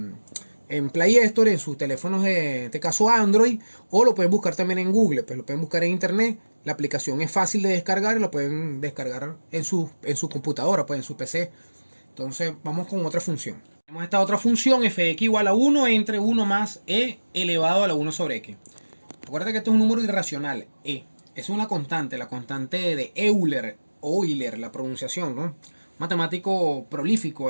en Play Store, en sus teléfonos de este caso Android, o lo pueden buscar también en Google, pues lo pueden buscar en internet. La aplicación es fácil de descargar y lo pueden descargar en su computadora, pues en su PC. Entonces vamos con otra función. Tenemos esta otra función, fx igual a 1 entre 1 más e elevado a la 1 sobre x. Recuerda que esto es un número irracional, e. Es una constante, la constante de Euler, la pronunciación, ¿no? Matemático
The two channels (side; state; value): both; inverted; correlation -1.00